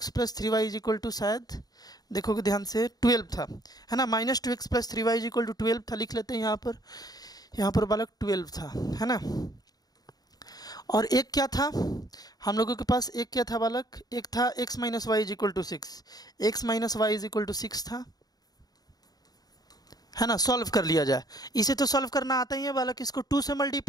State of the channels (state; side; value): late; right; 0.19 ms